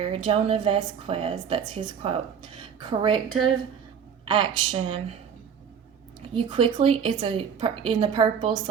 Jonah Vasquez, that's his quote. Corrective action. You quickly, in the purple,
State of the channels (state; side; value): quieter; left; 7.4 dB